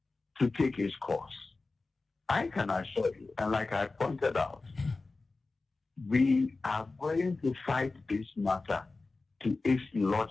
to take its course. I can assure you, and like I pointed out, we are going to fight this matter to its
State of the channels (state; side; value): quieter; right; 3.6 dB